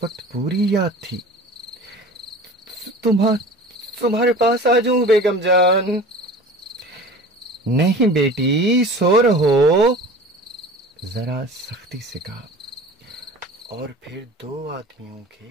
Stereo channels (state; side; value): normal; both; correlation 0.40